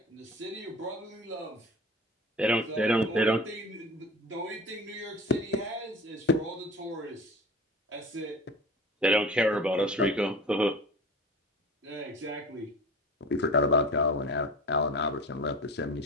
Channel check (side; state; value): both; normal; correlation 0.36